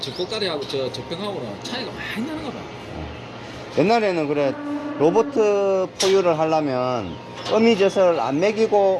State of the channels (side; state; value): both; identical; correlation 1.00